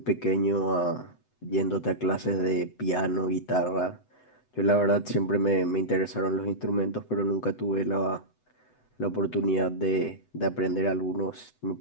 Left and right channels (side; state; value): right; late; 7.9 ms